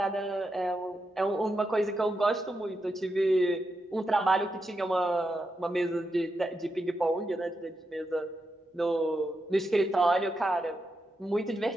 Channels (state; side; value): normal; both; correlation 0.85